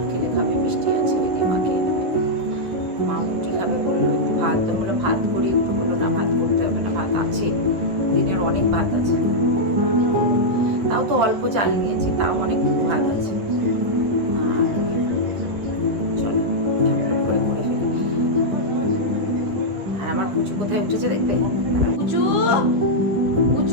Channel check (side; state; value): left; late; 9.7 ms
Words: খেলে খাবে, মিষ্টি আছে ওই দিয়ে মা খেয়ে নেবে। মা রুটি খাবে বললো, একটু ভাত, তো বললাম ভাত করি একটু, বললো না ভাত করতে হবে না, ভাত আছে, দিনের অনেক ভাত আছে, তাও তো অল্প চাল নিয়েছি, তাও অনেকটুকু ভাত আছে। আর চলো ঝটপট করে করে ফেলি। আর আমার পুচু কোথায় উঠেছে দেখবে, পুচু